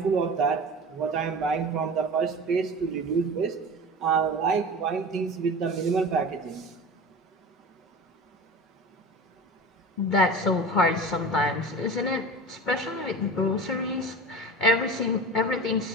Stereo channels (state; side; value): normal; both; correlation 0.33